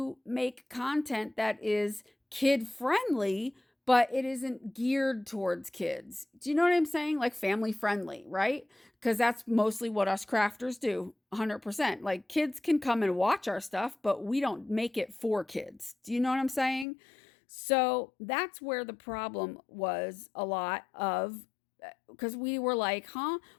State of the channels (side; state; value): right; drops out; at 16.9 s